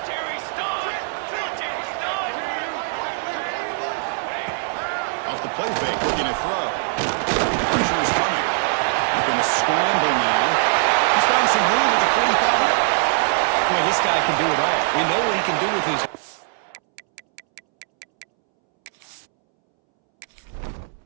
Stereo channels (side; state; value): left; silent; 64 dB below the other